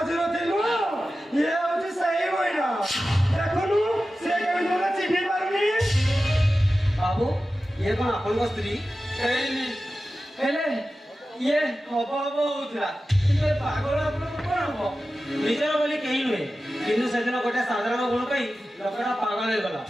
ନଥିଲୁ ଇଏ ହଉଛି ସେଇ ମହିଳା ଦେଖୁନୁ ସେ କେମିତି ମୋତେ ଚିହ୍ନି ପାରୁନି ବାବୁ ଇଏ କଣ ଆପଣଙ୍କ ସ୍ତ୍ରୀ ହେଇନି ହେଲେ ଇଏ ହବ ହବ ହଉଥିଲା କିନ୍ତୁ ଏ ପାଗଳ ଆପଣଙ୍କୁ କଣ ହବ ନିଜର ବୋଲି କେହି ନୁହେଁ କିନ୍ତୁ ସେଦିନ ଗୋଟେ ସାଧାରଣ ଗୁଣ ପାଇଁ ଲୋକଟା ପାଗଳ ହେଇଗଲା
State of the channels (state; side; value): normal; both; correlation 0.94